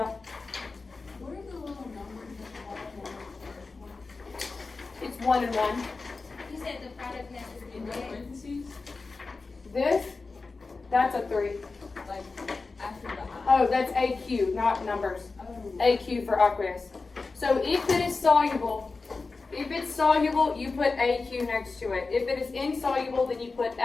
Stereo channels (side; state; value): right; quieter; 4.0 dB